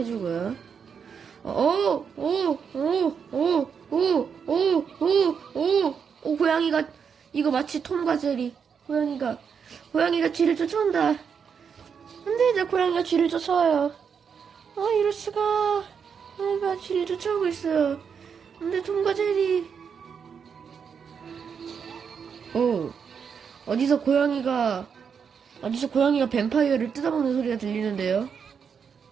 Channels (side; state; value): left; quieter; 6.7 dB